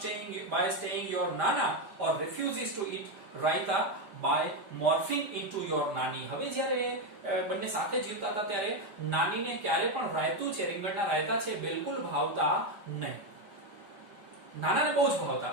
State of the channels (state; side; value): late; left; 5.0 ms